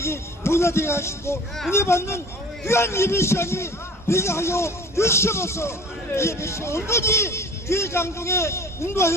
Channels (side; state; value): both; normal; correlation 0.44